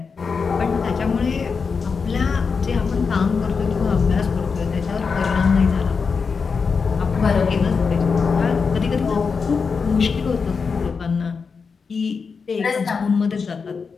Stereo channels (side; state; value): right; quieter; 5.3 dB